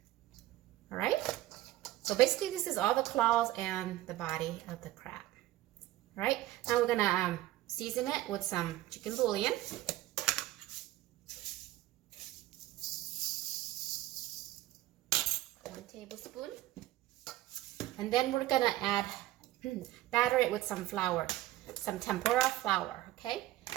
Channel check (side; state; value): left; quieter; 15.7 dB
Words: All right, so basically this is all the claws and the body of the crab. All right, now we're gonna season it with some chicken bouillon. 1 tablespoon. And then we're gonna add, batter it with some flour, some tempura flour, okay?